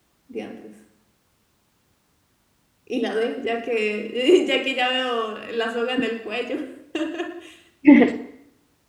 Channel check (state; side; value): identical; both; correlation 1.00